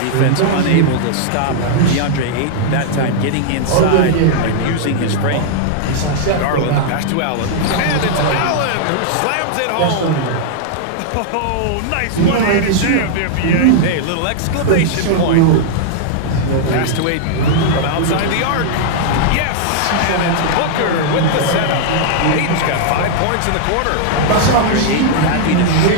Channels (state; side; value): different; both; correlation -0.01